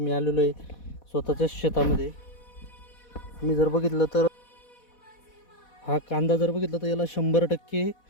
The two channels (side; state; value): right; late; 4.1 ms